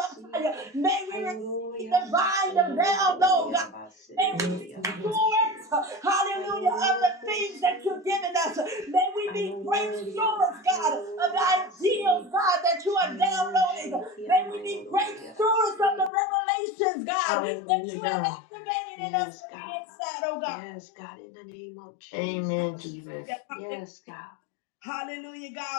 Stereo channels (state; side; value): drops out; right; at 16.1 s